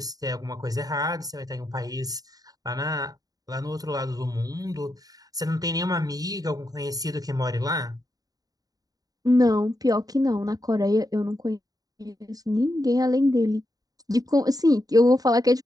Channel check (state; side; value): late; left; 0.18 ms